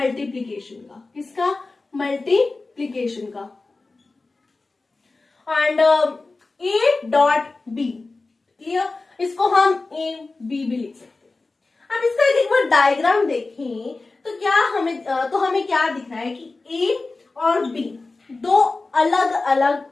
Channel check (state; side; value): quieter; right; 3.5 dB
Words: का। किसका? मल्टीप्लीकेशन का। And A dot B. Clear? इसको हम ए बी भी लिख सकते हैं। अब इसका एक बार डायग्राम देखें तो हमें क्या दिख रहा है कि ए और बी 2 अलग अलग